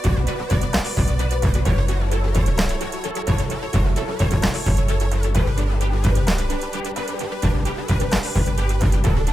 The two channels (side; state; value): both; normal; correlation 0.92